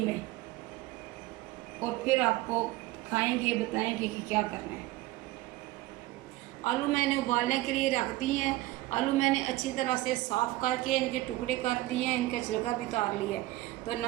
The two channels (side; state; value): left; quieter; 17.9 dB